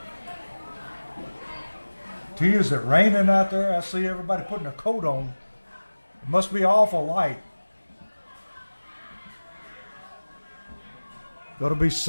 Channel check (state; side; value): inverted; both; correlation -1.00